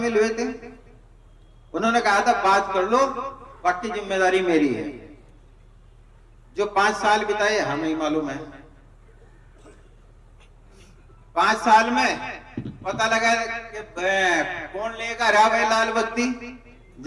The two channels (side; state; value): both; identical; correlation 1.00